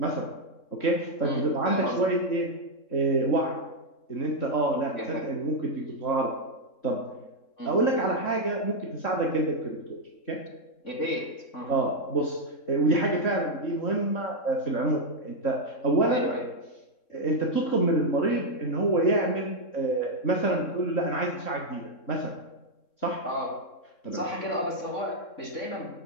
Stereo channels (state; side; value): late; right; 3.7 ms